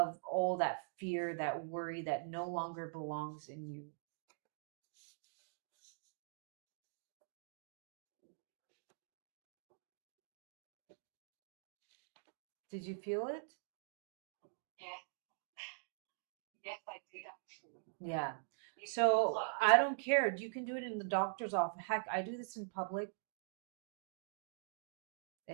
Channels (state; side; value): silent; left; digital silence